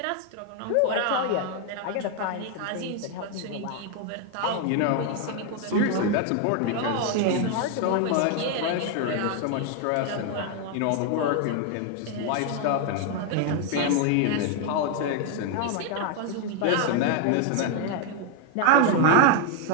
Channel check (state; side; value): different; both; correlation 0.00